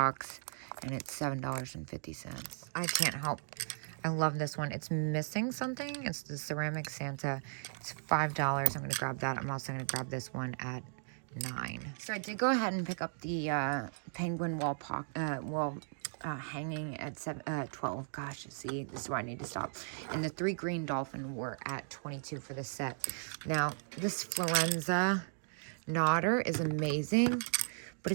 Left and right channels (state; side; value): silent; left; digital silence